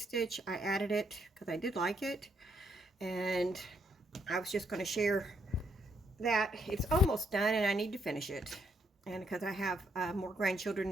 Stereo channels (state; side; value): normal; both; correlation 0.73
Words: I added it because I did like it. And I was just going to share that it's almost done and I need to finish it, and because I have more grandchildren